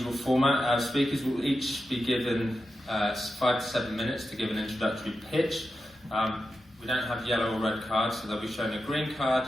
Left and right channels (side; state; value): both; normal; correlation 0.90